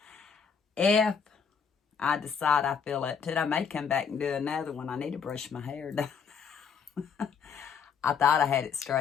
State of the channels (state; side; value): quieter; right; 6.6 dB